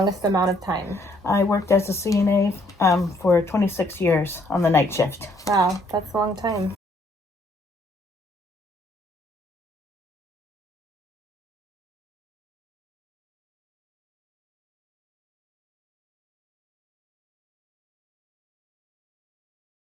amount of time? I worked as a CNA for 26 years on the night shift. Wow, that's a long time.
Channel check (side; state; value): both; normal; correlation 0.67